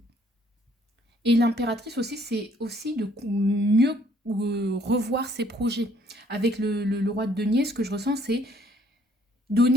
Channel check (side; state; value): both; normal; correlation 0.63